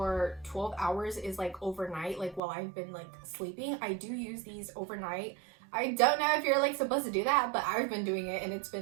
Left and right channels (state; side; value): drops out; left; at 2.4 s